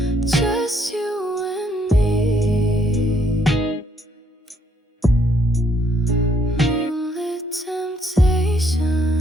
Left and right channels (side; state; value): both; normal; correlation 0.70